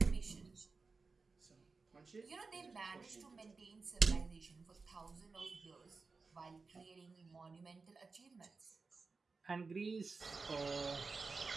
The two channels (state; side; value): quieter; left; 4.3 dB